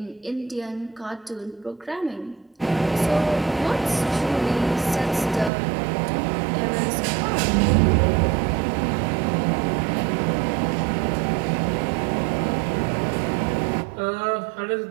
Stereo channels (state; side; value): drops out; left; at 5.5 s